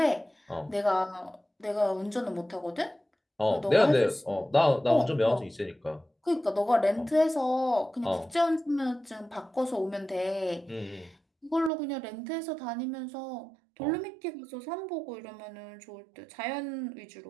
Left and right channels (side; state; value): left; drops out; at 11.7 s